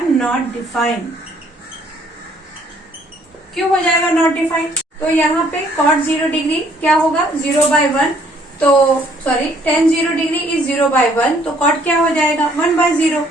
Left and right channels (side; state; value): both; normal; correlation 0.63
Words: नॉट डिफाइन। क्यों हो जाएगा नॉट डिफाइन, तो यहाँ पे cot 0 डिग्री क्या होगा 0/1, तो सॉरी tan 0 डिग्री इज 0/1, तो cot क्या हो जाएगा 1/0।